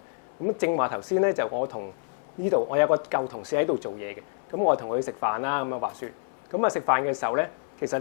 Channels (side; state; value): right; silent; 60 dB below the other